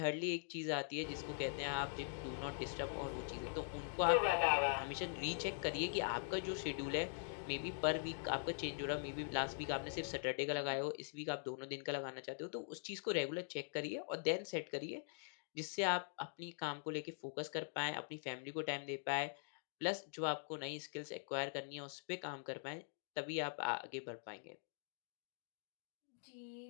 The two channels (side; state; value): right; silent; digital silence